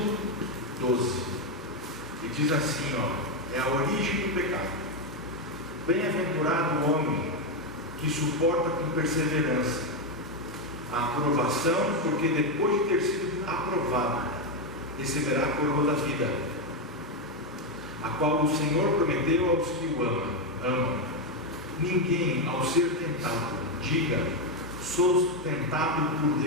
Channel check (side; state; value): both; normal; correlation 0.05